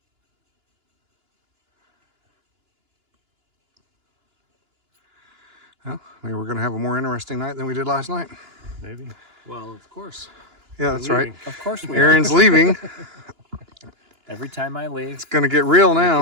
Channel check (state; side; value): late; left; 2.9 ms